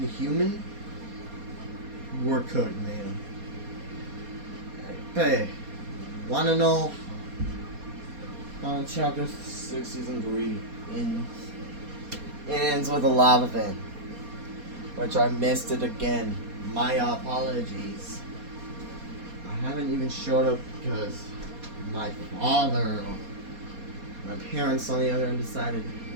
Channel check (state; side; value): late; left; 4.2 ms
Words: human. We're cooked, man. Hey, wanna know how chapter 6 season 3 ends with a lava vent, which I missed it again. My apologies. I haven't even showed up because my father, my parents on the other end decided